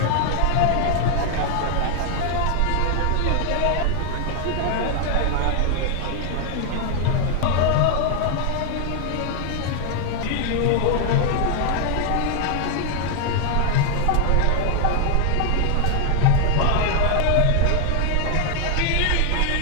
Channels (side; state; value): both; different; correlation 0.00